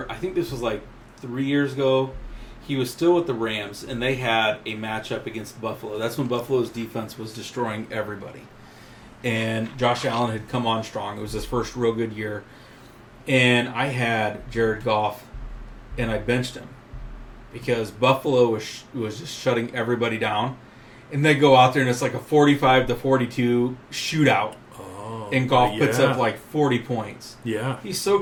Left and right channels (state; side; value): identical; both; correlation 1.00